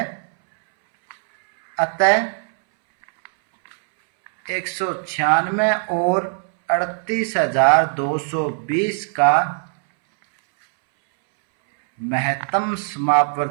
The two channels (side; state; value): left; silent; 66 dB below the other